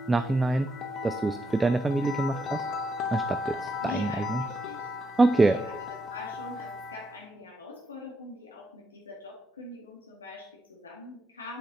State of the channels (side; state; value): both; normal; correlation 0.81